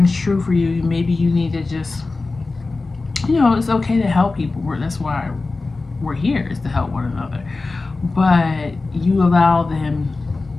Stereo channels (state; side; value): quieter; right; 3.6 dB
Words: true for you, maybe you need to just, you know, it's okay to help people. That's why we're here, is to help one another. But you allow them,